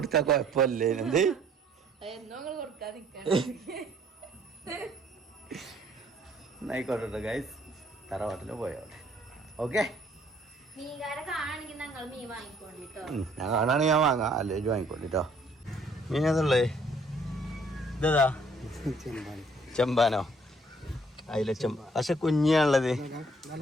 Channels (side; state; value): both; normal; correlation 0.62